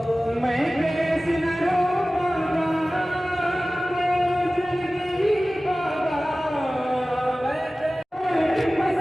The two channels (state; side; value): normal; both; correlation 0.97